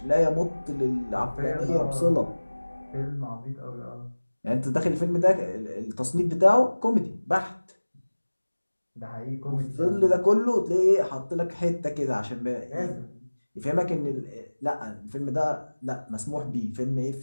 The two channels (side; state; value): both; inverted; correlation -1.00